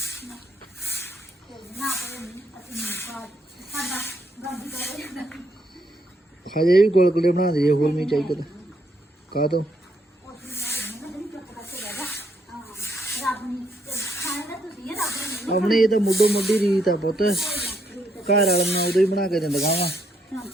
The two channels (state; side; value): normal; both; correlation 0.74